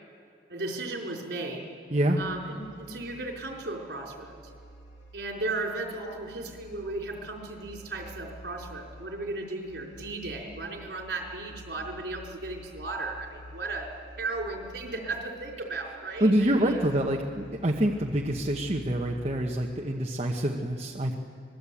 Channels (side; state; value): both; normal; correlation 0.64